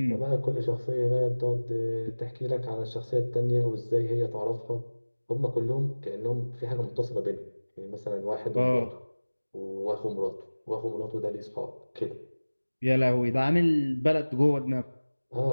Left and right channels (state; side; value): inverted; both; correlation -1.00